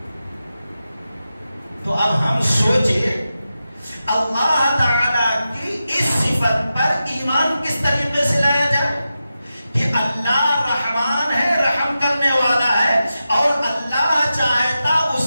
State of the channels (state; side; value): inverted; both; correlation -0.91